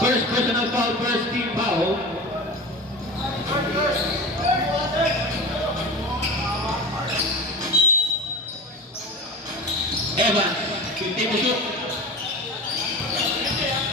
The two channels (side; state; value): both; normal; correlation 0.30